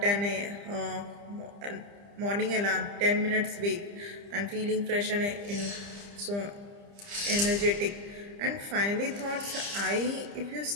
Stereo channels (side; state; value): left; late; 30 ms